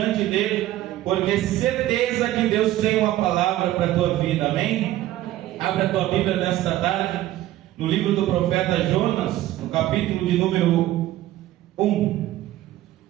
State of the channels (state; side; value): quieter; left; 14.7 dB